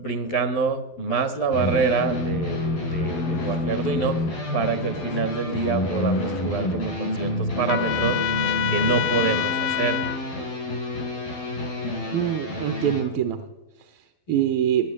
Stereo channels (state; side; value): late; right; 12 ms